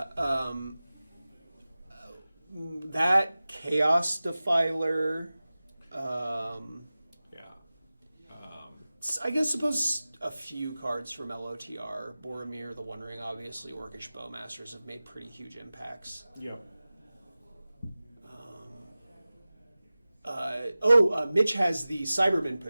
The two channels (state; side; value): inverted; both; correlation -0.97